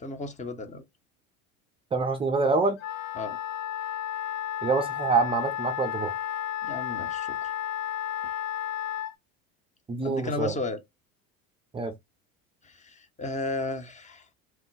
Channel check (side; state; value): both; normal; correlation 0.19